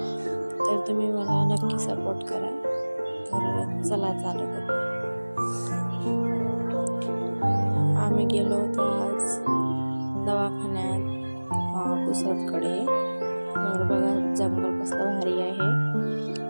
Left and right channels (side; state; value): both; inverted; correlation -1.00